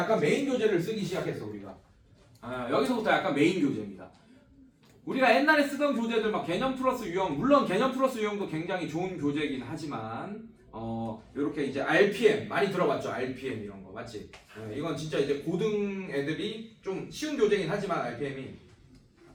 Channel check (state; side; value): identical; both; correlation 1.00